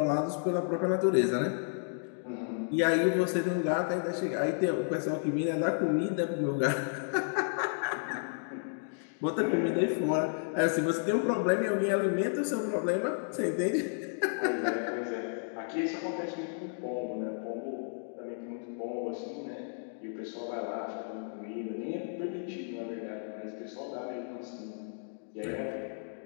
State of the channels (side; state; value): right; silent; digital silence